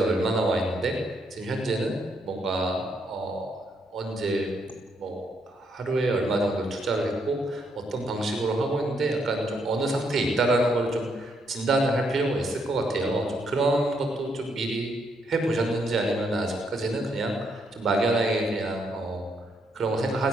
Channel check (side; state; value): both; normal; correlation 0.75